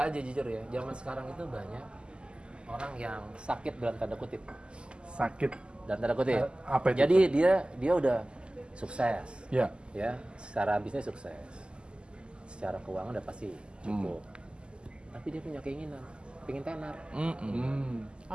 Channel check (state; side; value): late; left; 0.050 ms